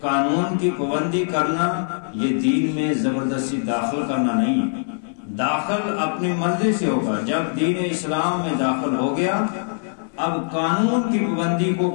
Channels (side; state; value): right; silent; digital silence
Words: قانون کی پابندی کرنا یہ دین میں زبردستی داخل کرنا نہیں ہے، داخل اپنی مرضی سے ہوگا۔ جب دین اسلام میں داخل ہو گیا، اب قانون کی پابندی کو